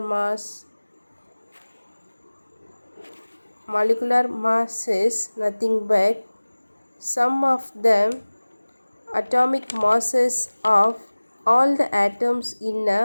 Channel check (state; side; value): inverted; both; correlation -1.00